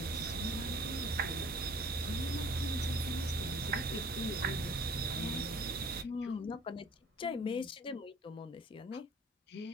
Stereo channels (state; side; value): normal; both; correlation 0.51